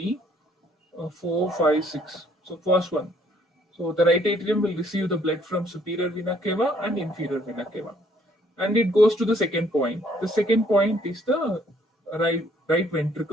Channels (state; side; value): normal; both; correlation 0.64